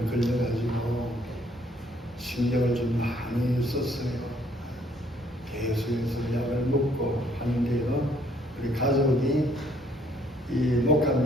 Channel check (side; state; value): both; normal; correlation 0.65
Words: 걸려가지고 신경을 좀 많이 썼어요. 계속해서 약을 먹고 하는데요. 우리 가족이 이 목